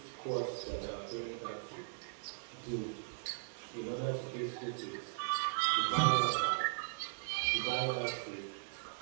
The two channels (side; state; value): left; silent; 52 dB below the other